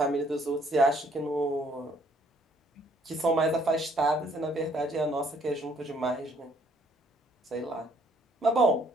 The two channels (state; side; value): normal; both; correlation 0.64